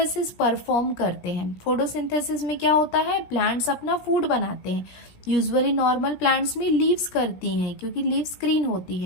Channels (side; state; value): right; late; 17 ms